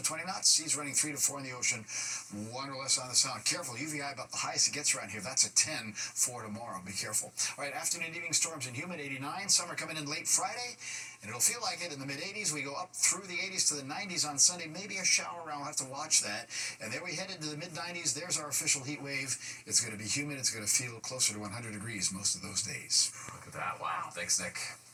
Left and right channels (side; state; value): both; identical; correlation 1.00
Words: 20 knots. Seas running 3 to 4 in the ocean, 1 or less on the sound. Careful, UVI about the highest it gets around here. That's a 10 for tomorrow. Be careful. All right, afternoon and evening storms and humid, 89. Summer coming in late Friday, and it'll feel like it in the mid-80s. We go up through the 80s to the 90s on Sunday. Maybe a shower around. We'll have to watch that. And then we head into the mid-90s. There's our official heat wave. It's going to be humid. It's going to feel closer to 100 degrees most of those days. Look at that. Wow. Thanks, Nick.